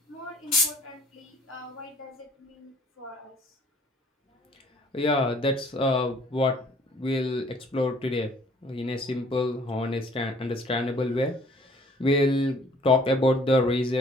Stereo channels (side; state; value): both; normal; correlation 0.56